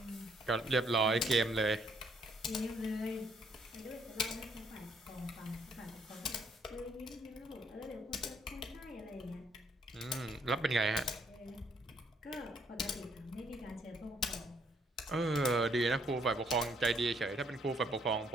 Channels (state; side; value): normal; both; correlation 0.68